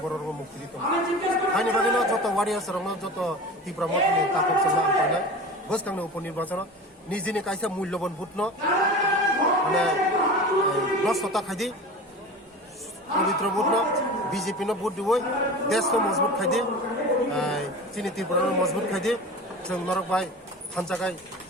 বড়র মুক্তি দিতাম আইনি বাগিনো যত ওয়ারিয়ার্স রং যত তীব্র মতনি তাপক সঙ্গে আন্তনা বসকাংনো উপনির্বাচন নিজেনি কাইসা মূল্যবান ভোট ন মানে নষ্টতা খাইদি পবিত্র ভোট ন BJP no ভোট দিবই দেশ তো মজবুত খাইদি চিনি তীব্র মজবুত খাইদি जों নরক ভাই খানচাকাই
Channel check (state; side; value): normal; both; correlation 0.34